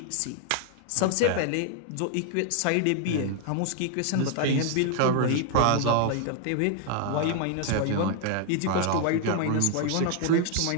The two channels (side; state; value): both; different; correlation 0.00